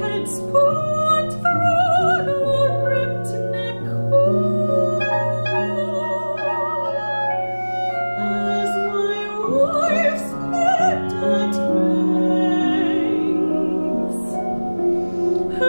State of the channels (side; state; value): both; inverted; correlation -1.00